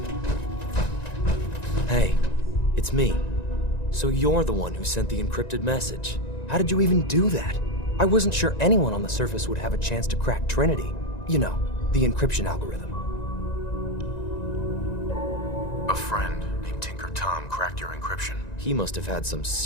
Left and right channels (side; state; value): right; late; 1.9 ms